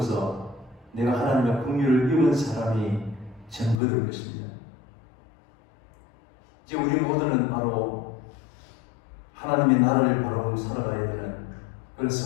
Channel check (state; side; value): drops out; right; at 3.8 s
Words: 내가 하나님의 긍휼을 입은 사람이 증거될 것입니다. 이제 우리 모두는 바로 하나님의 나라를 바라보고 살아가야 되는 그런